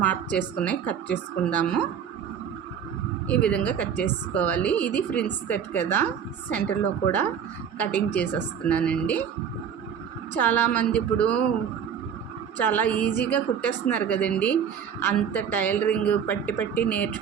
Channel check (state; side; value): quieter; left; 7.9 dB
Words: మార్క్ చేసుకుని కట్ చేసుకుందాము. ఈ విధంగా కట్ చేసుకోవాలి. ఇది ఫ్రిన్స్ కట్ కదా, సెంటర్లో కూడా కటింగ్ చేసేస్తున్నానండి. చాలామంది ఇప్పుడు చాలా ఈజీగా కుట్టేస్తున్నారు కదండి. అంత టైలరింగ్ పట్టి